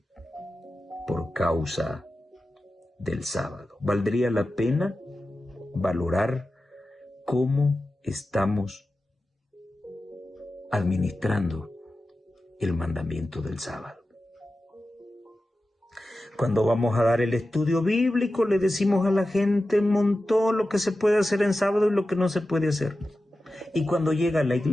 por causa del sábado. Valdría la pena valorar cómo estamos administrando el mandamiento del sábado. Cuando vamos a dar el estudio bíblico, le decimos a la gente un montón lo que se puede hacer en sábado y lo que no se puede hacer. Y cuando llega a la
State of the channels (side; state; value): both; normal; correlation 0.93